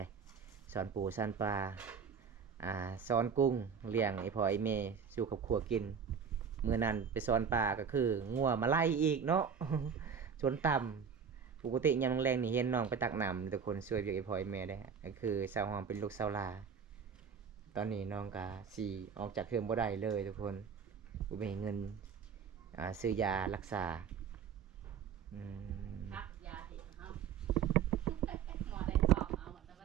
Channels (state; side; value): quieter; left; 6.8 dB